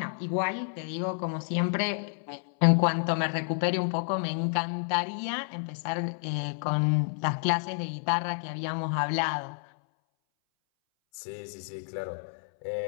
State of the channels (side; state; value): right; silent; 58 dB below the other